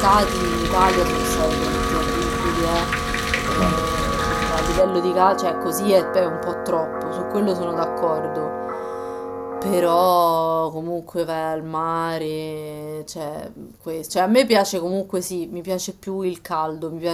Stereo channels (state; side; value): identical; both; correlation 1.00